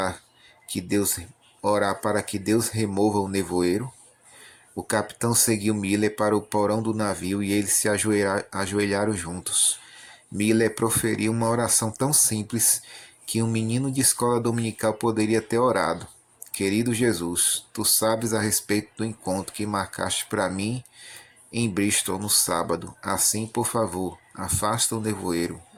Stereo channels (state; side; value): identical; both; correlation 1.00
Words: para que Deus remova o nevoeiro? O capitão seguiu Miller para o porão do navio e eles se ajoelharam juntos. Miller proferiu uma oração tão simples que um menino de escola dominical poderia ter orado. Querido Jesus, tu sabes a respeito do encontro que marcaste para mim em Bristol no sábado. Assim, por favor, afasta o nevoeiro.